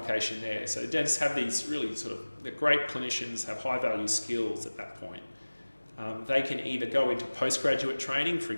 there. So dentists have these really they're great clinicians, have high value skills at that point. They can either go into postgraduate training, for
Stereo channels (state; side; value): inverted; both; correlation -1.00